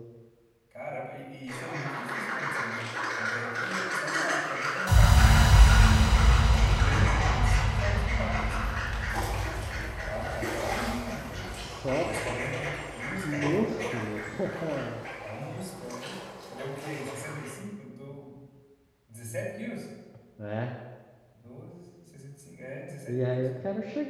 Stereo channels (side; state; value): both; identical; correlation 1.00